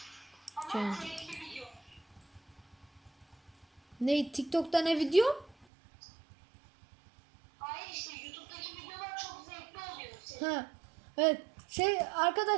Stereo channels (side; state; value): left; drops out; at 5.7 s